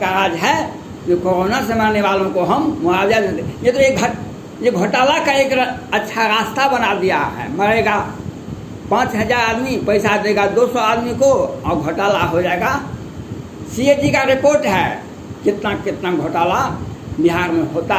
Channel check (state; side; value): identical; both; correlation 1.00